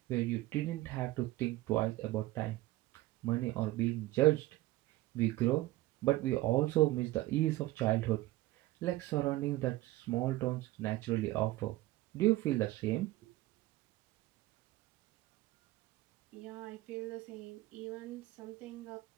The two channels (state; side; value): quieter; left; 17.7 dB